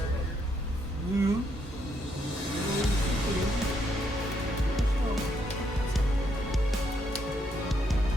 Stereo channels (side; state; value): both; normal; correlation 0.75